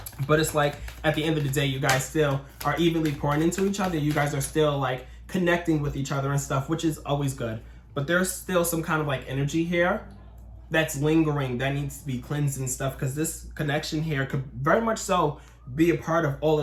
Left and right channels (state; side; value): identical; both; correlation 1.00